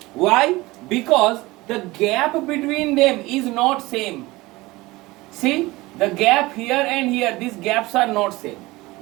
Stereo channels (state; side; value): quieter; left; 20.7 dB